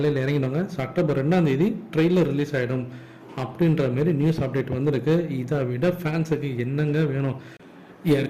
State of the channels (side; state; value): both; identical; correlation 1.00